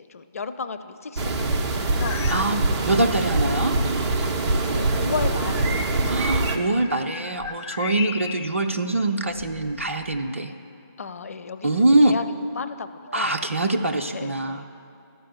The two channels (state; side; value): inverted; both; correlation -0.69